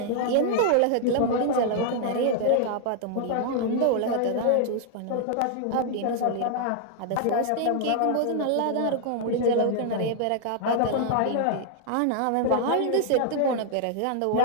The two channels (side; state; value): both; different; correlation 0.00